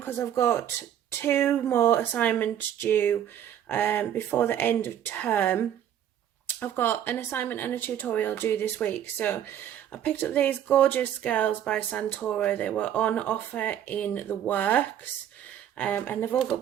I've got 2 more assignments due before the end of term. I've got an assignment and a tutorial due this week, so I picked up these Gorjuss girls by Santoro. They were on offer in the works, and they've all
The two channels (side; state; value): left; quieter; 10.3 dB